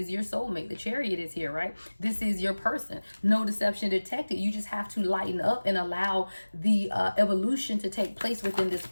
your soulmate. The Chariot is here, right? This is your person. No deception detected. You just have to lighten up and allow the evolution to take place within this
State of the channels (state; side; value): inverted; both; correlation -1.00